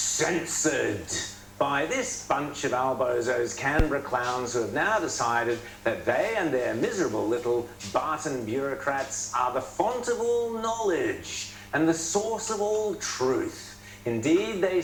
by this bunch of albozos, Canberra clowns, who have now decided that they and their miserable little Barton bureaucrats are the font of all knowledge and the source of all truth. Indeed, they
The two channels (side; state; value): both; identical; correlation 1.00